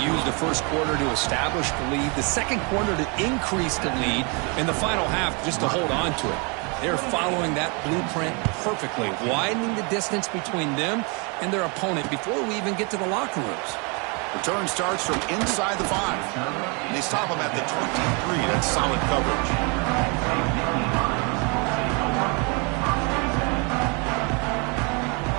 use the first quarter to establish the lead, the second quarter to increase the lead, and the final half just to hold on to it. They're following that blueprint perfectly, widening the distance between them and their opponent before we even get to the locker rooms. Return starts from inside the 5. And they stop him at the 23. That's solid coverage.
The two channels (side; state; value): left; quieter; 32.7 dB